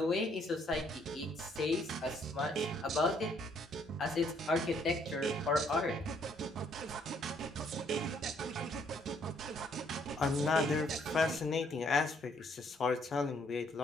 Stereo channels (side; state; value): both; normal; correlation 0.67